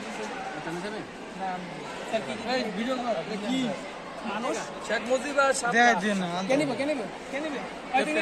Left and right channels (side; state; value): both; identical; correlation 1.00